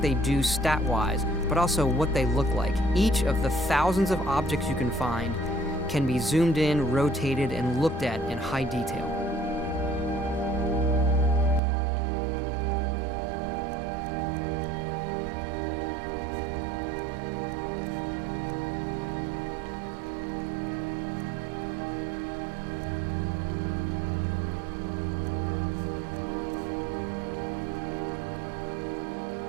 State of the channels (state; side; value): drops out; left; at 11.6 s